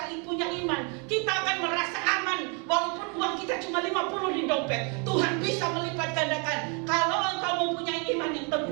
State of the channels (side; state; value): left; quieter; 35.4 dB